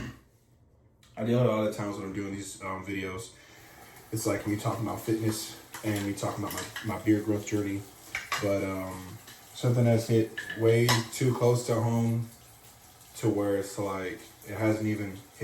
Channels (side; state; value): both; identical; correlation 1.00